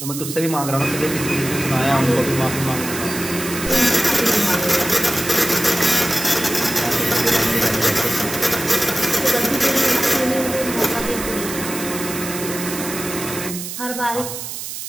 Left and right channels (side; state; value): right; noise; hiss, 7 dB below the sound